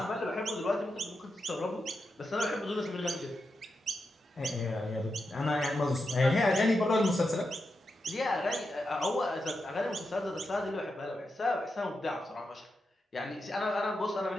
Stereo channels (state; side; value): normal; both; correlation 0.87